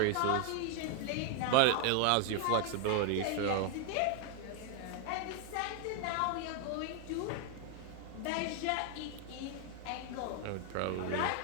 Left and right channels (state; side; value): different; both; correlation 0.01